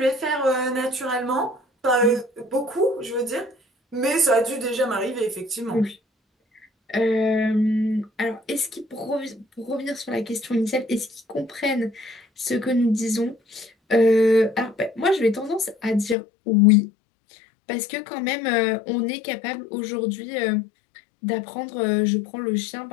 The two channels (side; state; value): right; drops out; at 16.2 s